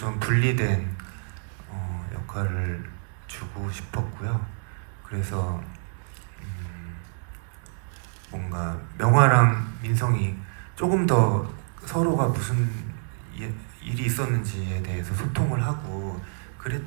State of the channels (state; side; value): silent; left; digital silence